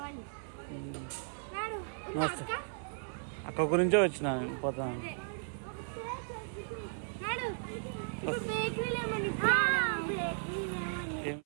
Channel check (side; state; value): left; silent; 54 dB below the other